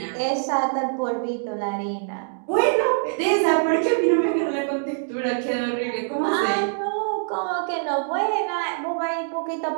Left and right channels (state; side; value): silent; left; digital silence